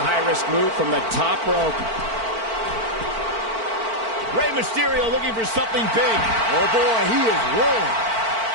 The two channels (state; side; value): late; left; 4.5 ms